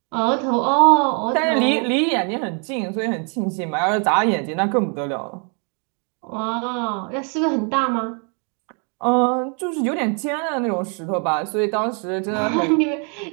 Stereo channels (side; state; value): left; quieter; 38.3 dB